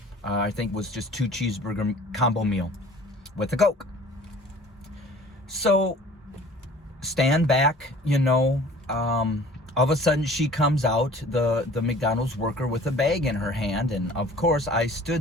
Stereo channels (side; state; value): both; normal; correlation 0.48